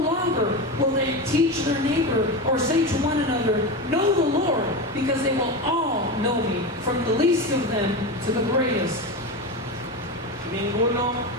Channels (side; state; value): both; normal; correlation 0.20